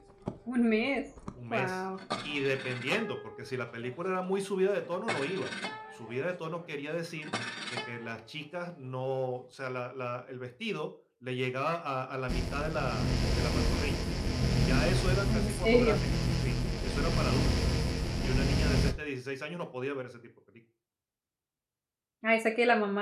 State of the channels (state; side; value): identical; both; correlation 1.00